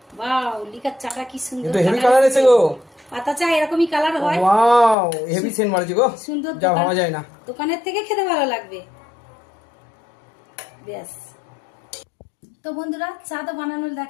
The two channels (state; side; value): drops out; right; at 5.0 s